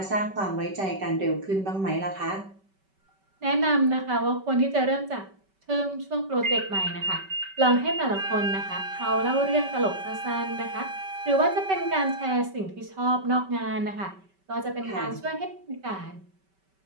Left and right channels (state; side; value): late; left; 5.2 ms